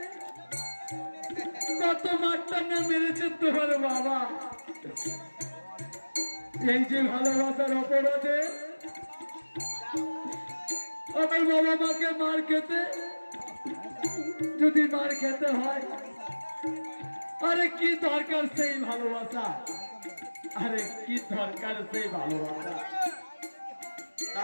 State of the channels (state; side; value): inverted; both; correlation -1.00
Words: কত মারটা না মেরেছে তোমার বাবা। এই যে ভালোবাসার অপরাধে আমার বাবা মাকে মার খেতে, যদি মার খেতে হয়, আরে কি দরকার সেই ভালোবাসা, আরে কি দরকার সেই ভালোবাসা।